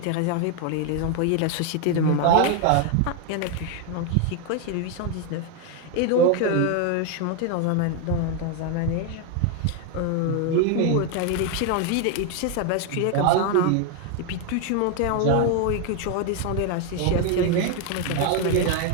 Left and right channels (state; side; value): different; both; correlation 0.01